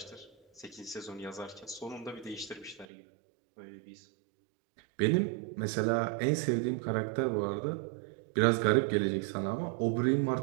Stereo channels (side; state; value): left; drops out; at 2.9 s